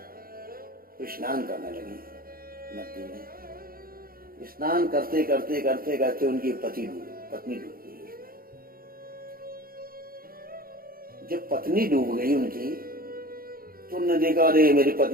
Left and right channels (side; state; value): left; late; 0.42 ms